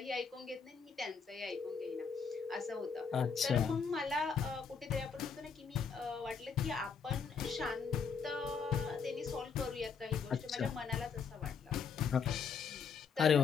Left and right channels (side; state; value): right; quieter; 5.9 dB